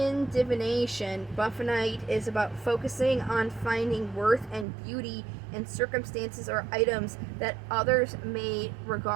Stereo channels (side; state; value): left; drops out; at 4.7 s